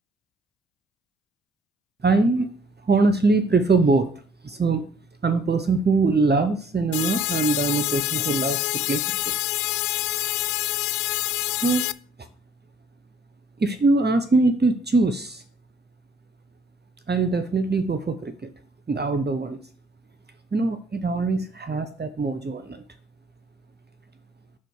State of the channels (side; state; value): both; normal; correlation 0.58